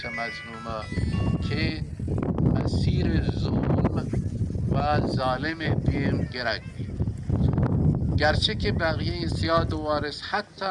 مظلومه که مسیر ظلم و ظالم بیم گرک بید گرچه که بقیه سیاد و وارث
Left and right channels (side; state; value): both; identical; correlation 1.00